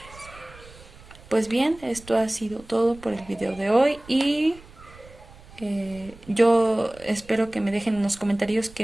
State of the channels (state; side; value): noise; right; rumble, 21 dB below the sound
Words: Pues bien, esto ha sido todo por el video de hoy y yo espero que me dejen en los comentarios